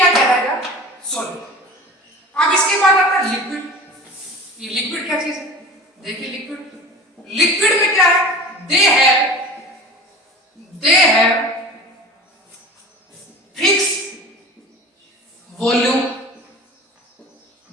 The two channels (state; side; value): normal; both; correlation 0.37